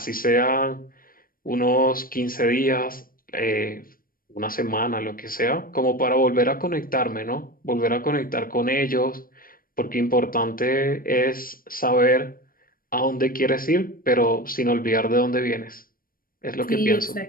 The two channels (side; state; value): right; late; 0.41 ms